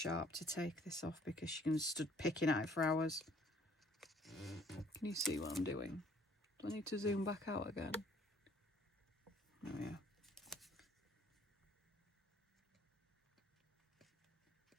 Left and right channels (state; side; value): normal; both; correlation 0.59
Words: to take this off because she can stood picking at it for hours. Can you see what I'm doing? Do I need to zoom back out again? Oh yeah.